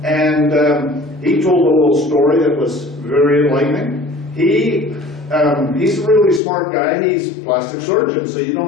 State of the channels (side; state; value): right; drops out; at 6.4 s